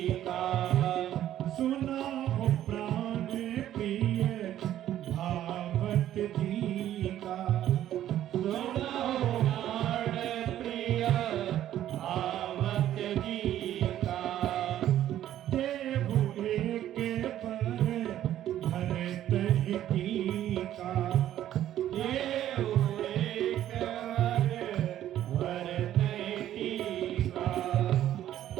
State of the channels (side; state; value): left; quieter; 12.1 dB